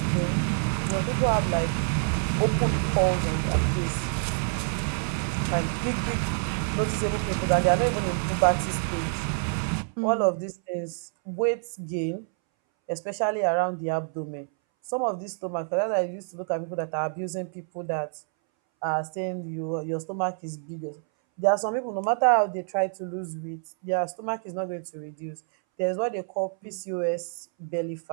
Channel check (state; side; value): silent; left; 60 dB below the other